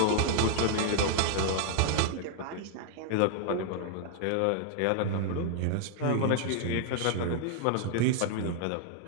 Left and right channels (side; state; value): both; different; correlation 0.00